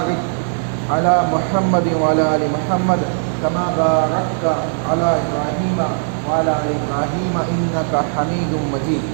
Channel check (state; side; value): silent; left; 67 dB below the other